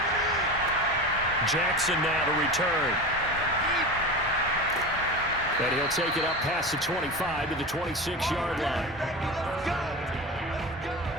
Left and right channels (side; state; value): both; normal; correlation 0.27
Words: Jackson now to return. And he'll take it up past the 25 to the 26-yard line.